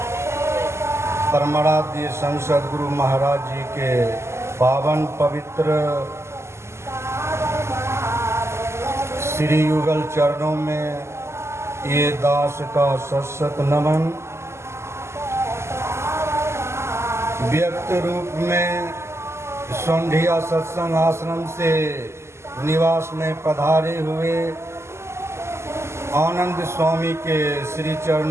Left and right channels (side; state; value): left; late; 0.13 ms